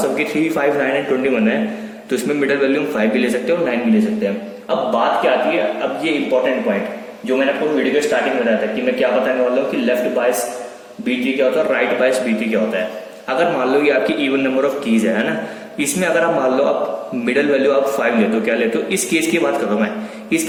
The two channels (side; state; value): both; identical; correlation 1.00